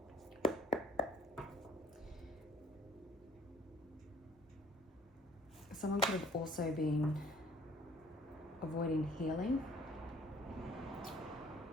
Someone could have also been avoiding healing.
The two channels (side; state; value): both; normal; correlation 0.56